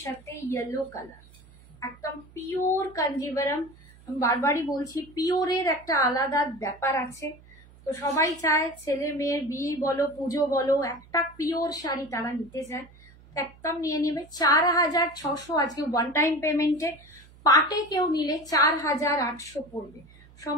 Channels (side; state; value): right; noise; hum, 24 dB below the sound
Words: সাথে ইয়েলো কালার, একদম পিওর কাঞ্জিভারম। আমি বারবারই বলছি পিওরের একটা আলাদা ব্যাপার আছে, তো সবাই চায় ছেলে মেয়ের বিয়ে বলো পুজো বলো একটা পিওর শাড়ি তারা নিতে চায়, একদম নিয়ে নেবে। 4600 আজকে ওয়ান টাইম পেমেন্টে, পাটে কেউ নিলে 4800 পড়বে।